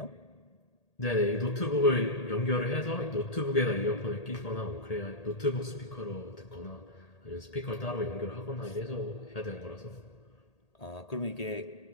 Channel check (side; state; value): right; late; 1.8 ms